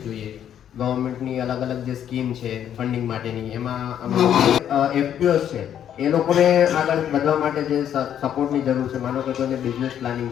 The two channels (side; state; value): right; quieter; 9.8 dB